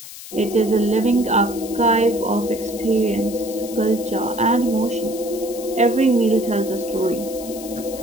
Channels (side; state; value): left; noise; hiss, 14 dB below the sound